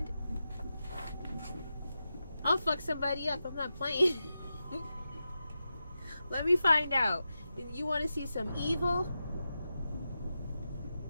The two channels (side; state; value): both; inverted; correlation -0.91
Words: I'll fuck somebody up, I'm not playing. Let me find out. You want to see some evil?